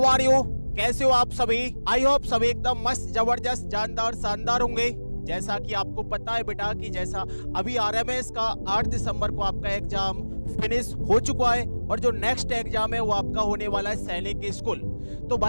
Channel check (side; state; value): both; inverted; correlation -1.00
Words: are you? कैसे हो आप सभी? आई होप सभी एकदम मस्त, जबरदस्त, जानदार, शानदार होंगे। जैसा कि आपको पता है बेटा कि जैसा अभी आरएमएस का 8 दिसंबर को आपका एग्जाम फिनिश हो चुका है और जो नेक्स्ट एग्जाम है वो आपका होने वाला है सैनिक स्कूल। तो